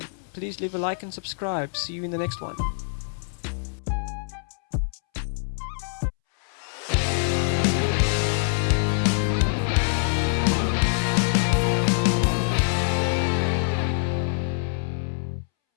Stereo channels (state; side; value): silent; right; 62 dB below the other